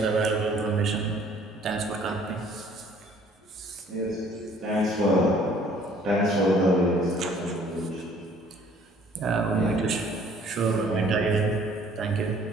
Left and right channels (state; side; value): normal; both; correlation 0.57